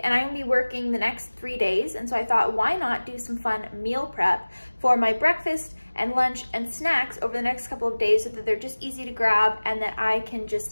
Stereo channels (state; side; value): inverted; both; correlation -1.00